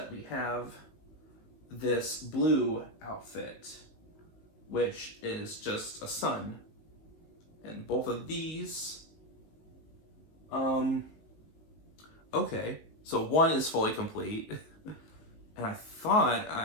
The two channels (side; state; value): right; late; 19 ms